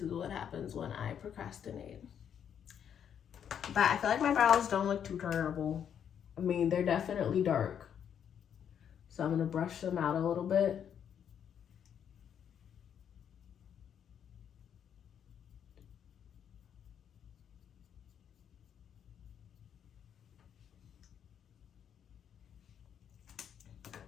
what happens when I procrastinate. But I feel like my brows don't look too terrible. I mean, they're definitely dark. So I'm gonna brush them out a little bit.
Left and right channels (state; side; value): quieter; right; 8.6 dB